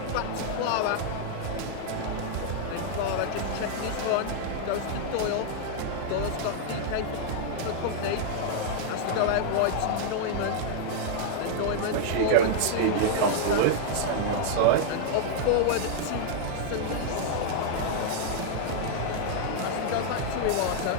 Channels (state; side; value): different; both; correlation -0.01